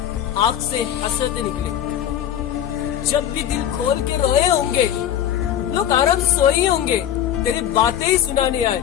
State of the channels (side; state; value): right; quieter; 10.5 dB